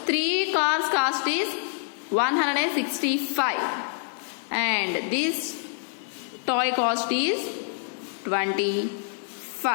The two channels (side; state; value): right; silent; 61 dB below the other